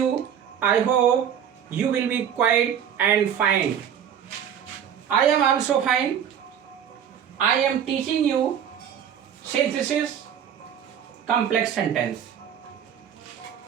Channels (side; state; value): left; quieter; 8.8 dB